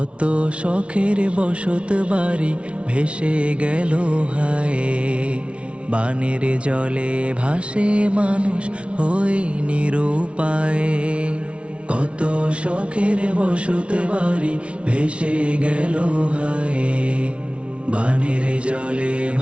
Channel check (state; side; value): late; left; 0.060 ms